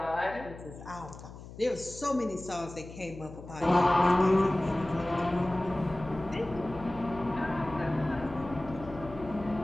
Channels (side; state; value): left; noise; hum, 15 dB below the sound